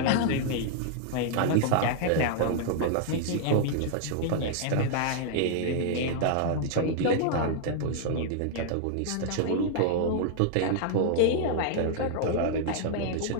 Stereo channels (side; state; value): both; different; correlation -0.01